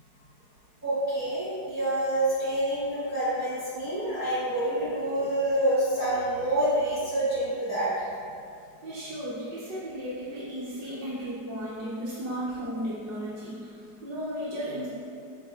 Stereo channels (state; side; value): late; left; 4.8 ms